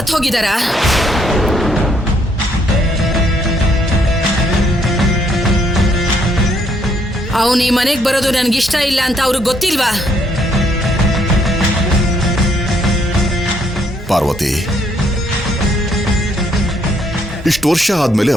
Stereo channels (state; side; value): normal; both; correlation 0.70